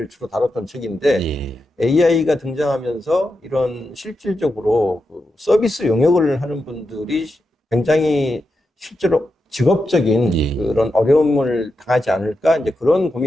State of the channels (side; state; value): both; normal; correlation 0.88